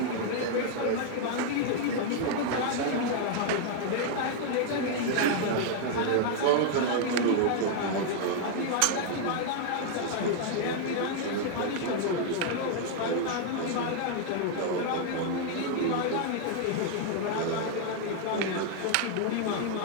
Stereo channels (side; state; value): both; different; correlation 0.00